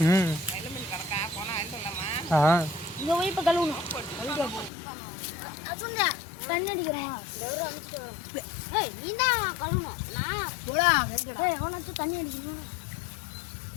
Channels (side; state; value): right; drops out; at 4.7 s